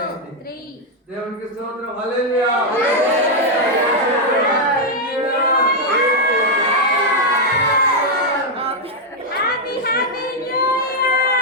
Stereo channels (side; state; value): both; normal; correlation -0.01